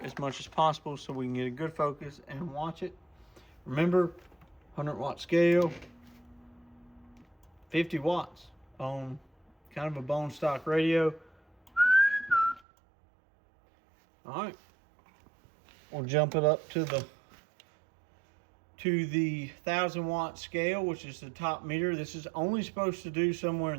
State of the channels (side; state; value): left; drops out; at 12.6 s